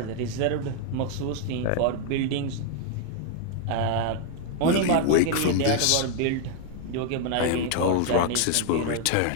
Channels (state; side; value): different; both; correlation 0.00